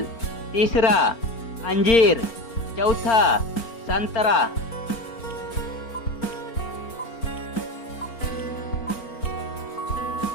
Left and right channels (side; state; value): right; late; 4.4 ms